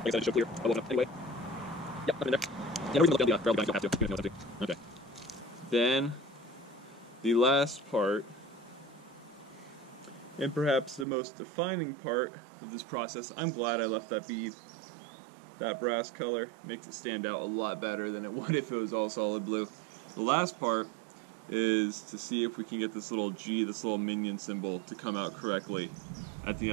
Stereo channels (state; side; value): drops out; left; at 11.1 s